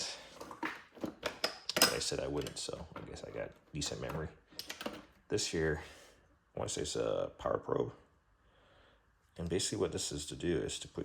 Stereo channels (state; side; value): identical; both; correlation 1.00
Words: but I said I wouldn't, so I guess I got decent memory. This here, I want to say it's a power probe. And basically what this is to do is to